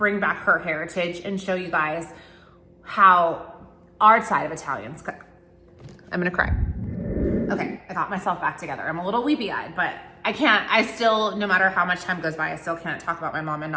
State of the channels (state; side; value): identical; both; correlation 1.00